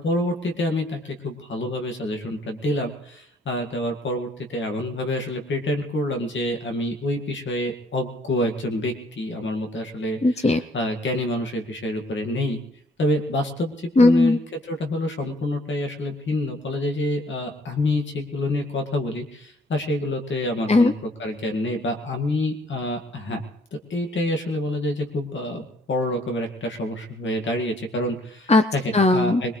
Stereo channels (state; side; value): normal; both; correlation 0.63